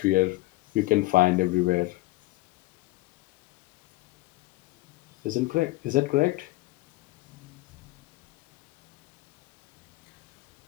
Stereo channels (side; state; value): right; quieter; 19.6 dB